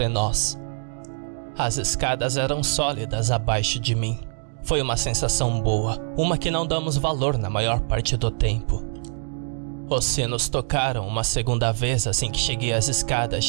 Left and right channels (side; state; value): left; silent; digital silence